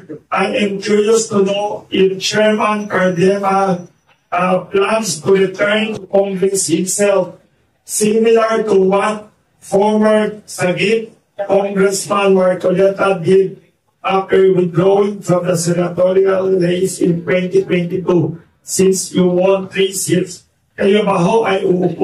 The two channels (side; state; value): both; identical; correlation 1.00